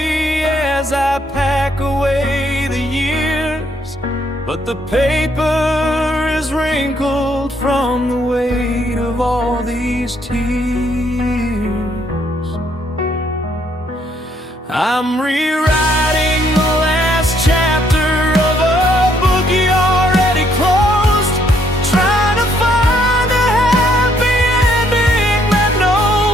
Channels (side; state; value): both; normal; correlation 0.69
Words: as I pack away the years, but the paper is wrinkled from the weight of all these tears. I'm rewriting the last chapter of a book you already closed, trying to find a happy ending that